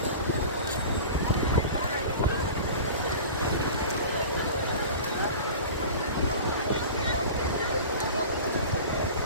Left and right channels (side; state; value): both; inverted; correlation -0.36